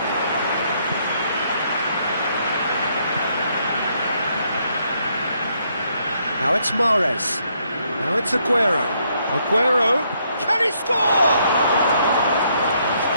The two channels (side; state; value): both; inverted; correlation -0.72